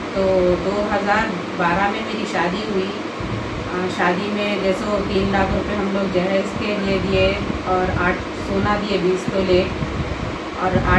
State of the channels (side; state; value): both; identical; correlation 1.00